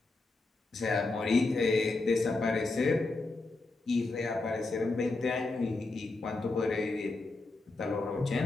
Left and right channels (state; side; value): quieter; right; 3.3 dB